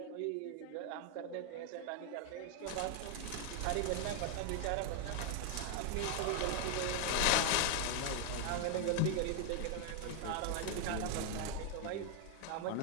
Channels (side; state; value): both; different; correlation 0.00